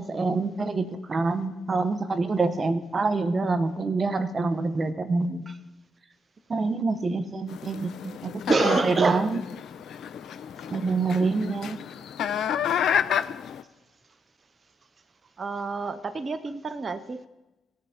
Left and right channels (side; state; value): both; normal; correlation 0.81